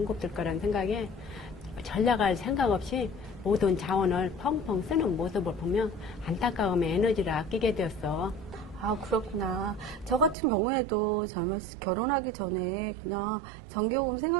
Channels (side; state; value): left; drops out; at 10.4 s